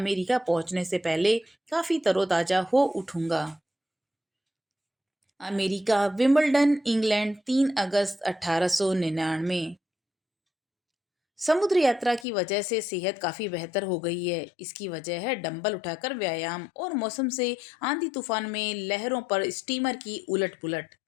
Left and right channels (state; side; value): drops out; right; at 12.2 s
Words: पहुंचने से पहले काफी तरोताजा हो उठूंगा। अमेरिका, विंबलडन, इंग्लैंड, 3 अगस्त 1899। समुद्र यात्रा की वजह से सेहत काफी बेहतर हो गई है। इसकी वजह है डंबल उठाकर व्यायाम और मौसम से आंधी तूफान में लहरों पर स्टीमर की उलट पुलट।